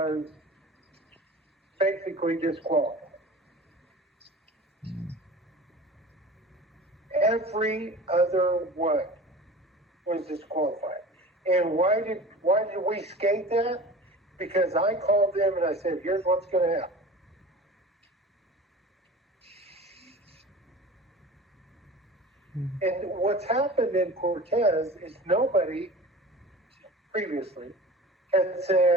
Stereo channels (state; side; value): normal; both; correlation 0.37